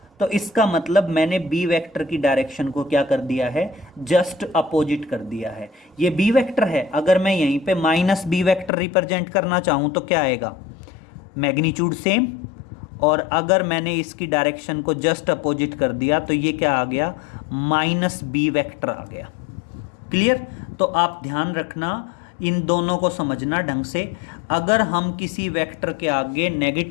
तो इसका मतलब मैंने बी वेक्टर की डायरेक्शन को क्या कर दिया है, जस्ट अपोजिट कर दिया है। ये बी वेक्टर है, अगर मैं यहीं पे माइनस बी वेक्टर रिप्रेजेंट करना चाहूं तो क्या आएगा, मैग्नीट्यूड सेम, और अगर मैंने इसकी डायरेक्शन को जस्ट अपोजिट कर दिया तो ये क्या आ गया, माइनस बी वेक्टर आ गया। क्लियर? तो आप ध्यान रखना, इन दोनों को समझना ढंग से। अगर हम किसी वेक्टर के आगे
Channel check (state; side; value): drops out; right; at 8.7 s